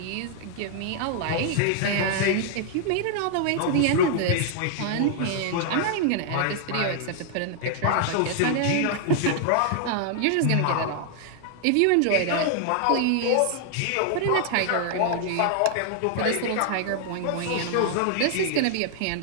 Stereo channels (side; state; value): both; different; correlation 0.00